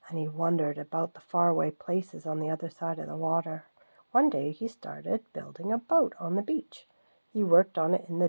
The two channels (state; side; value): inverted; both; correlation -1.00